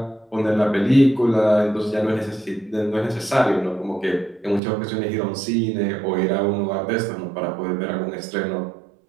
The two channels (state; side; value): drops out; left; at 4.6 s